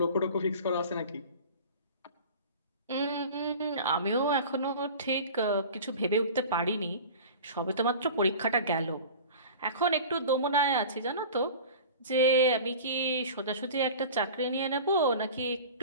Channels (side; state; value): both; inverted; correlation -0.38